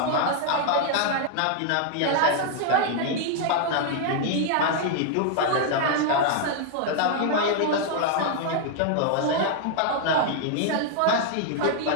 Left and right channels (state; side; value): different; both; correlation 0.00